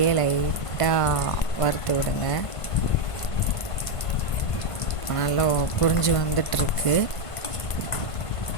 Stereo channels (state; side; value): late; right; 1.5 ms